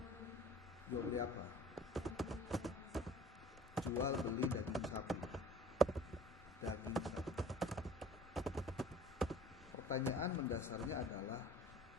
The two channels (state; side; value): normal; both; correlation 0.47